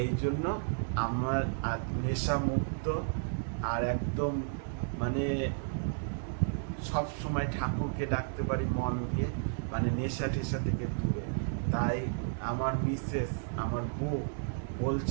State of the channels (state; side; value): silent; left; digital silence